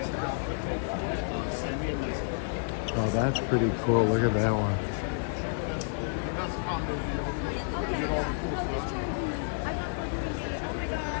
Oh, that's pretty cool. Look at that one.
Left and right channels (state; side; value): silent; right; 58 dB below the other